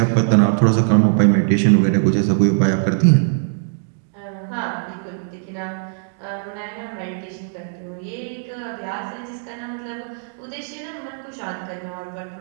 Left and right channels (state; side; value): silent; left; digital silence